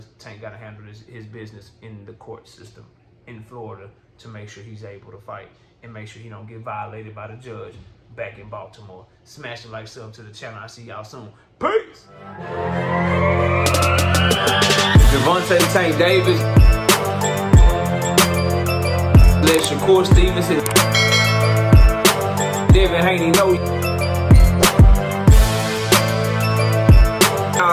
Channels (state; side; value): identical; both; correlation 1.00